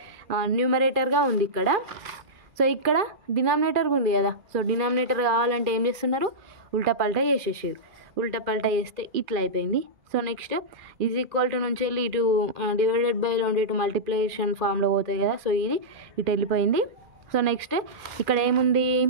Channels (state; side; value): late; left; 2.4 ms